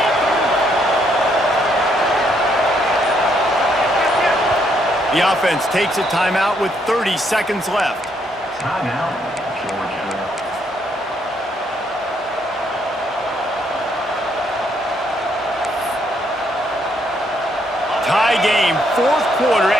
The offense takes a timeout with 30 seconds left. Timeout, Georgia. Tie game, 4th quarter,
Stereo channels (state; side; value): normal; both; correlation 0.72